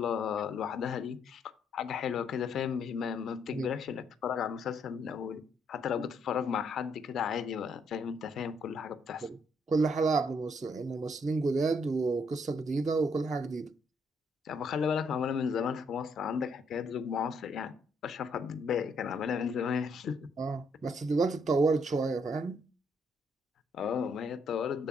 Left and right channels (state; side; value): normal; both; correlation 0.72